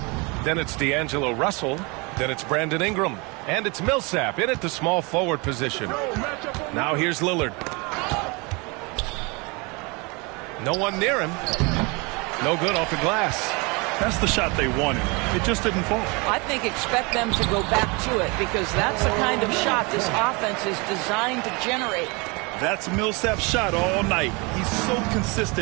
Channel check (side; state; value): left; quieter; 28.3 dB